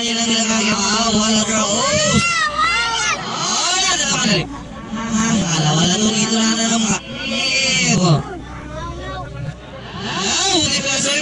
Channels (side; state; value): both; identical; correlation 1.00